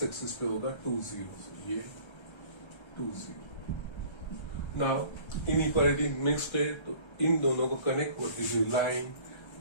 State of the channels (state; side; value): late; right; 1.3 ms